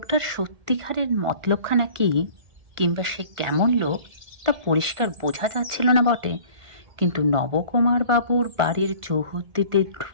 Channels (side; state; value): left; late; 1.7 ms